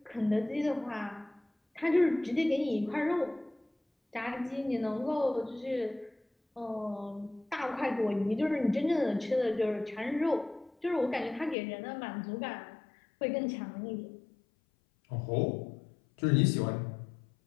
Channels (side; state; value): right; drops out; at 11.6 s